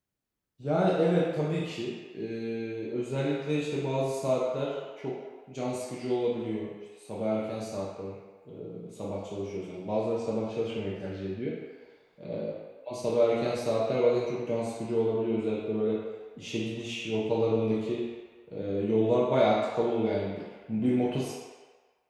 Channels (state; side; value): identical; both; correlation 1.00